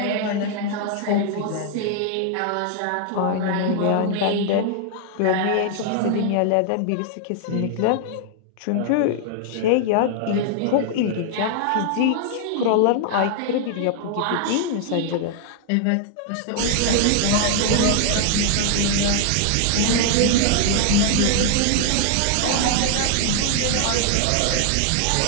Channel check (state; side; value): different; both; correlation 0.00